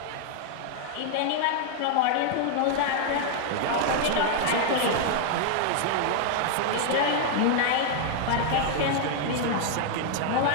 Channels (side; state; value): both; different; correlation 0.00